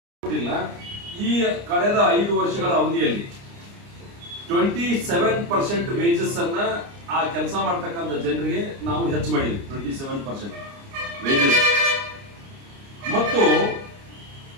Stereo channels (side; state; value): left; late; 29 ms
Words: ಈ ಕಳೆದ 5 ವರ್ಷಗಳ ಅವಧಿಯಲ್ಲಿ 27% ವೇಜಸ್ ಅನ್ನ ಆ ಕೆಲಸ ಮಾಡ್ತಕ್ಕಂಥ ಜನರಿಗೆ ನಾವು ಹೆಚ್ಚು ಮಾಡಿದ್ವಿ. 27% ವೇಜಸ್. ಮತ್ತು